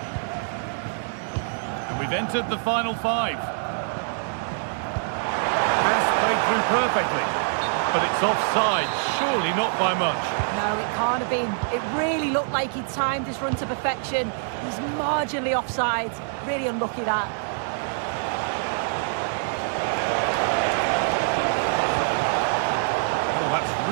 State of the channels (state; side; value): silent; left; 62 dB below the other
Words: And we've entered the final 5. Pass played through perfectly. But it's offside, surely not by much. No, it can't have been. It really looked like he timed his run to perfection. He's marginally offside. Really unlucky that. Oh, that's